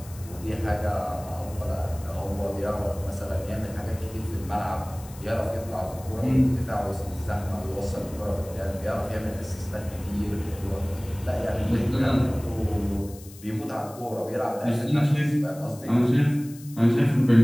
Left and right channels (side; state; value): left; noise; hiss, 19 dB below the sound